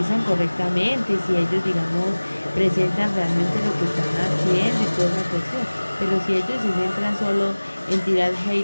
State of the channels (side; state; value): both; inverted; correlation -1.00